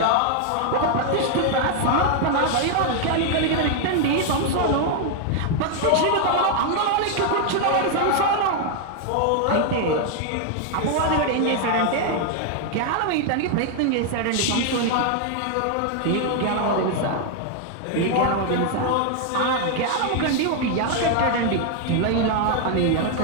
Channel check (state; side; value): different; both; correlation 0.00